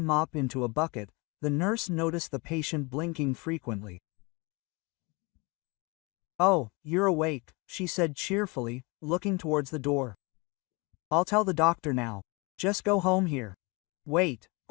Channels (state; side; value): quieter; right; 27.7 dB